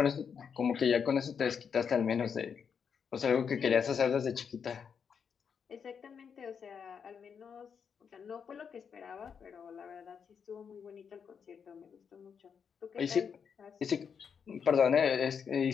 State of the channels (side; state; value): right; quieter; 6.8 dB